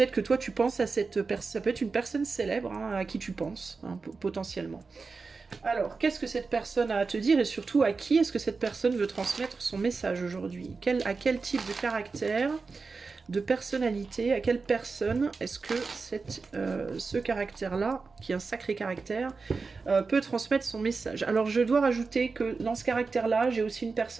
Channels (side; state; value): left; quieter; 4.4 dB